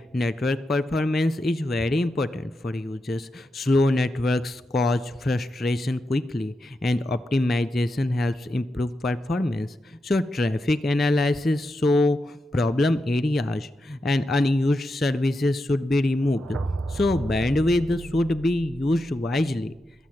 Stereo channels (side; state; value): both; normal; correlation 0.87